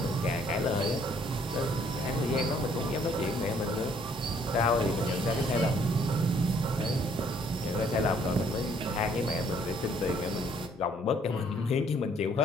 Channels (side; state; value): both; normal; correlation 0.63